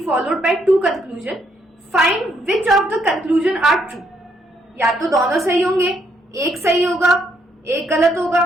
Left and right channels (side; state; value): both; normal; correlation 0.72